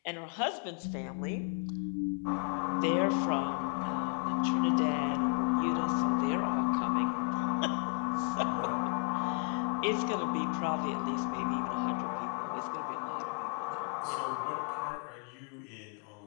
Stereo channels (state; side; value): quieter; right; 38.8 dB